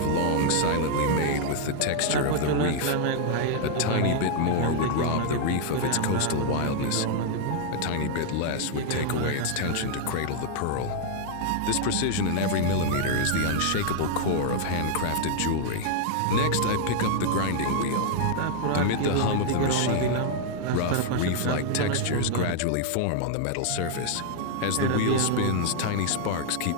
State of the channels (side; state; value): both; different; correlation 0.00